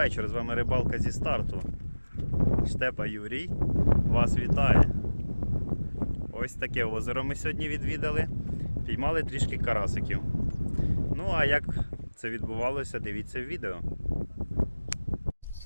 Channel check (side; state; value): both; inverted; correlation -1.00